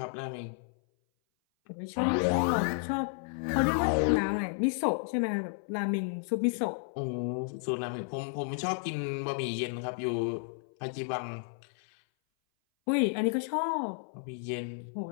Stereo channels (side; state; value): right; silent; 57 dB below the other